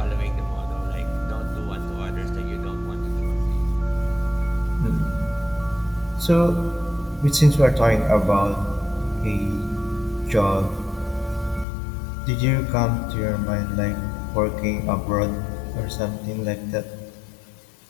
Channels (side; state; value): right; drops out; at 11.7 s